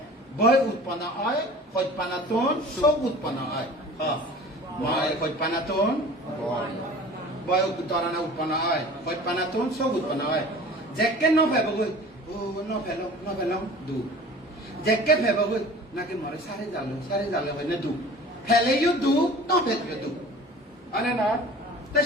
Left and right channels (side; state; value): both; normal; correlation 0.43